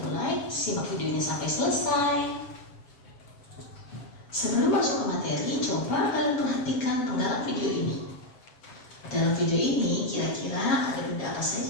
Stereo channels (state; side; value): late; right; 7.3 ms